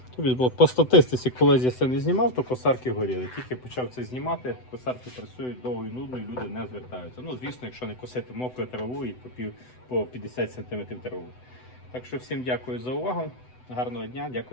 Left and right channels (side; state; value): right; late; 7.9 ms